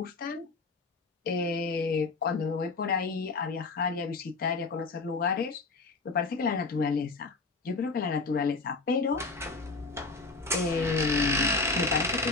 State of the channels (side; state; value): right; quieter; 3.7 dB